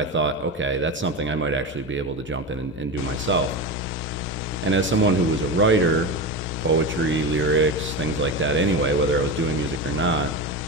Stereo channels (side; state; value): both; normal; correlation 0.21